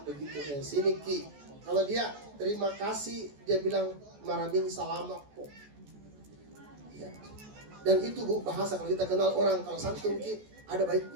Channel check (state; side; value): late; left; 14 ms